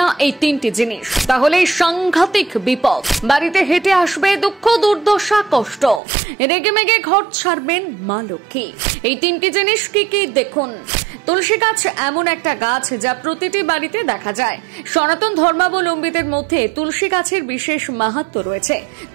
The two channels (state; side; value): drops out; left; at 6.0 s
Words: না এই তিনটি জিনিস, তাহলেই সাংঘাতিক বিপদ। বাড়িতে হেঁটে আসবে দুঃখ, দুর্দশা, কষ্ট, রেগেমেগে ঘর ছাড়বেন মা লক্ষ্মী। এই তিনটি জিনিস কি কি দেখুন। তুলসী গাছ এমন একটা গাছ যা প্রতিটি বাড়িতে দেখা যায়। সনাতন ধর্মাবলম্বীদের মধ্যে তুলসী গাছের বিশেষ মাহাত্ম্য রয়েছে।